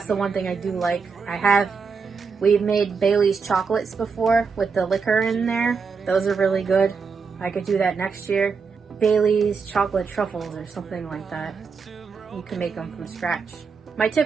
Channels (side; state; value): left; quieter; 5.3 dB